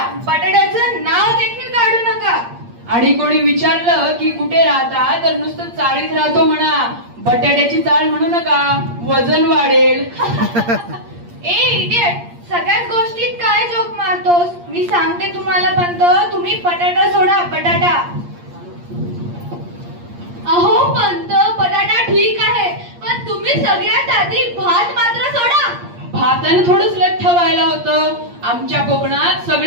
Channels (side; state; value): left; late; 8.6 ms